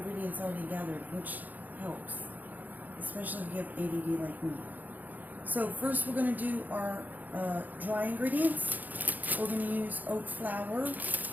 already gathered, which helps, especially if you have ADD like me. So first we're going to do our dry ingredients. We're going to use oat flour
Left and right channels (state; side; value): late; left; 0.083 ms